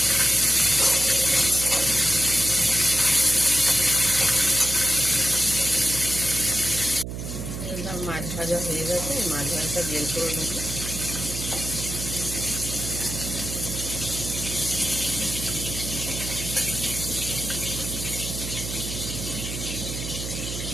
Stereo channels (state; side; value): noise; right; hum, 6 dB below the sound